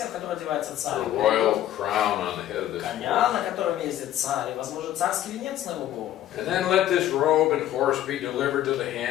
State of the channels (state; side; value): quieter; right; 12.4 dB